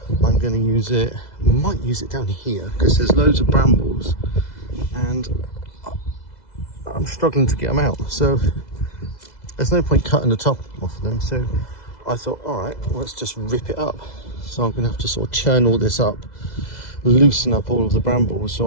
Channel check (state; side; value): late; right; 2.0 ms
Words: I'm going to use it, might use it down here because there's loads of brambles and I'm struggling to get them out. So there's no point cutting the top off of them. So I thought, all right, let's just rip it up. So I'm going to have to sort of churn all this up, loosen up all of the brambles